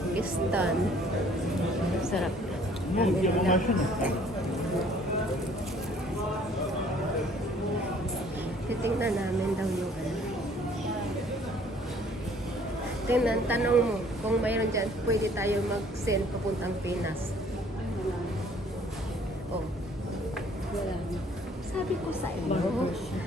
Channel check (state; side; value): normal; both; correlation 0.57